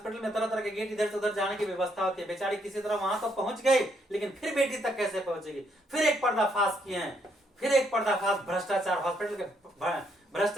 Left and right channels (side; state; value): both; normal; correlation 0.73